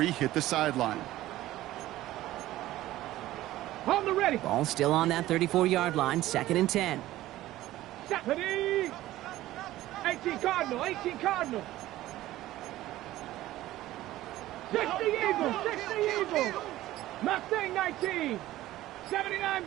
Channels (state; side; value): quieter; left; 15.5 dB